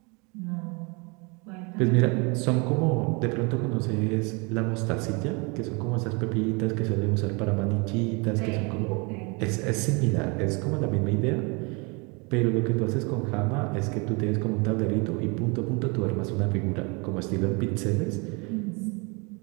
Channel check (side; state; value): left; quieter; 30.4 dB